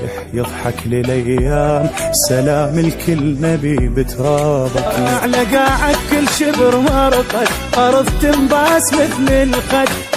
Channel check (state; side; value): identical; both; correlation 1.00